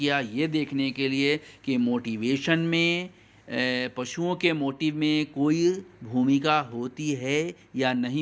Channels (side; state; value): both; identical; correlation 1.00